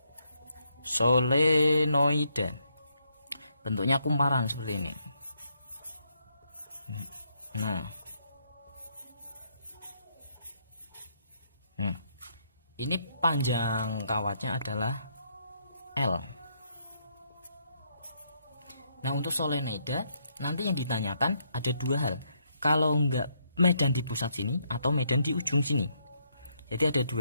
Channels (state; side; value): inverted; both; correlation -0.74